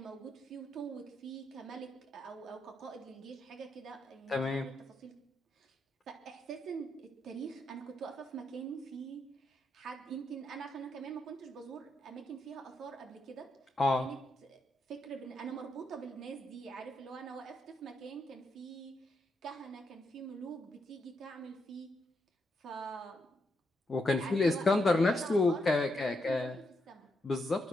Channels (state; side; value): normal; both; correlation 0.80